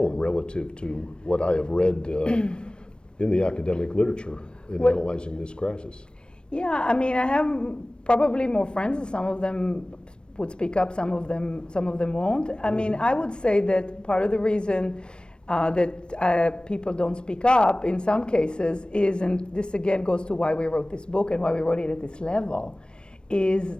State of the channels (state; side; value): late; right; 0.054 ms